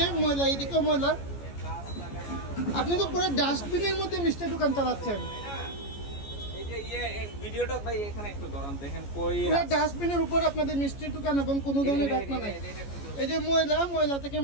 ময়লা, এইদিকেও ময়লা। আপনি তো পুরো ডাস্টবিনের মধ্যে মিষ্টির দোকান চালাচ্ছেন। ডাস্টবিনের উপর আপনাদের মিষ্টির দোকান এবং কোনো ধরনের ঢাকনা নাই। এই যে ময়লা থেকে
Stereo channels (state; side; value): late; right; 14 ms